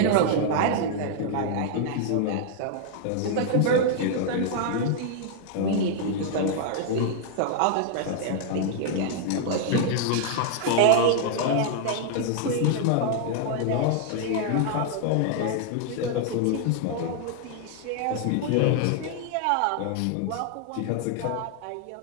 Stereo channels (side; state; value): both; different; correlation 0.00